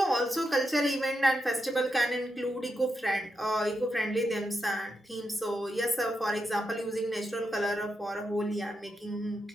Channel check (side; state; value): both; normal; correlation 0.85